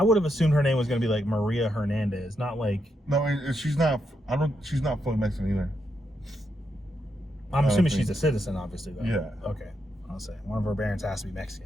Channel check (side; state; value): both; normal; correlation 0.82